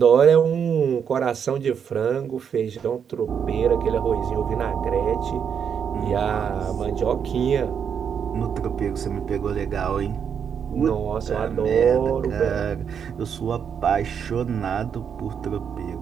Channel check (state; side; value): quieter; left; 7.5 dB